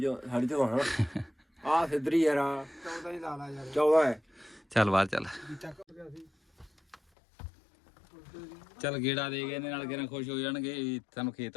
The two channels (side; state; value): right; drops out; at 7.0 s